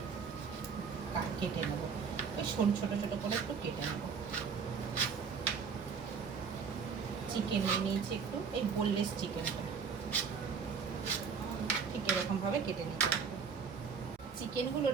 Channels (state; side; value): quieter; left; 6.1 dB